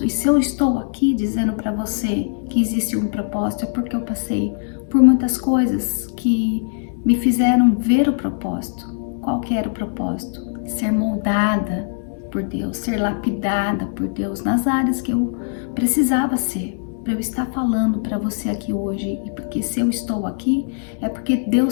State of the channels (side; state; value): right; silent; 62 dB below the other